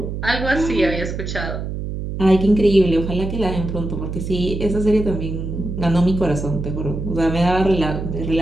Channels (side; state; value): right; noise; hum, 5 dB below the sound